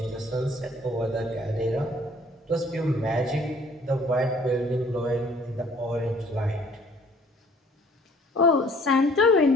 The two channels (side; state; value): both; normal; correlation 0.56